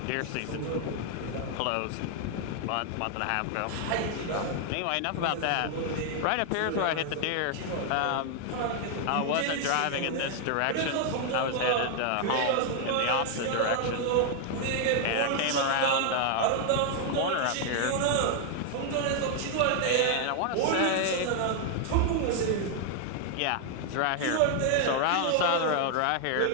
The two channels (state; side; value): different; both; correlation 0.00